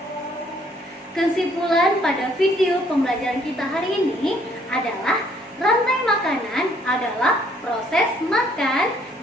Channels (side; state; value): both; normal; correlation 0.64